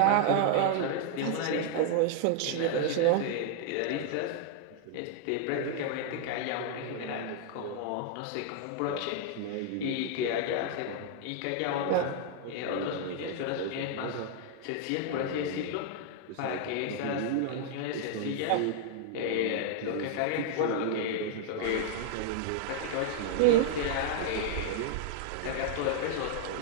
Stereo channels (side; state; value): both; different; correlation -0.01